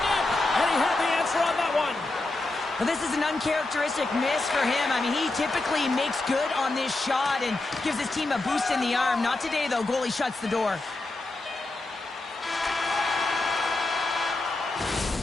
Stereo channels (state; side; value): quieter; right; 3.0 dB